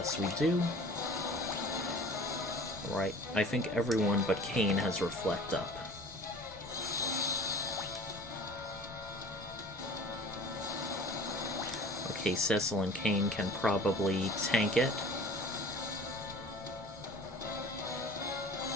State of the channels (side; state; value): both; normal; correlation 0.44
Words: we do. Right, I think everyone but Kane has Reflect up. Okay, Cecil and Kane can probably tank it.